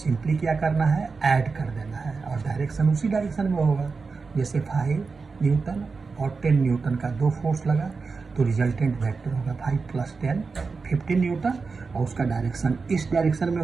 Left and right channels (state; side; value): quieter; left; 4.6 dB